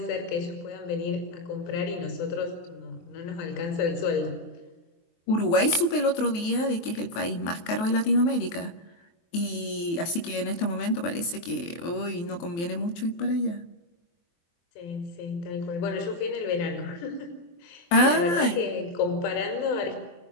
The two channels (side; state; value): right; late; 23 ms